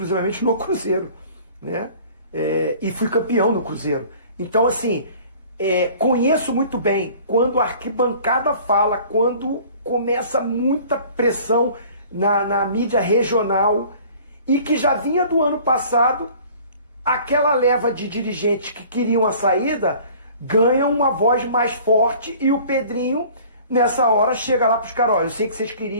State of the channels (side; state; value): both; inverted; correlation -0.49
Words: no Cruzeiro, né? E fui campeão no Cruzeiro. Então, assim, conheço muito bem quando a arquibancada fala, quando começa muita pressão na mídia regional, e que já vinha do ano passado, aquela leva de dirigentes que queriam a saída ganha uma voz mais forte, e o Pedrinho, nessa hora, chega lá para os caras: olha, eu sei que vocês